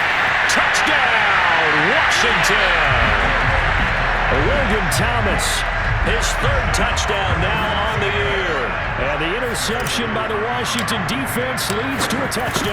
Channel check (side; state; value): both; identical; correlation 1.00